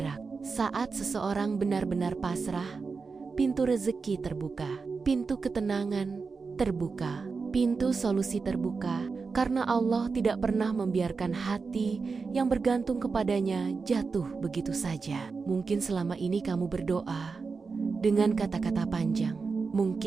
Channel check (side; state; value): left; quieter; 4.7 dB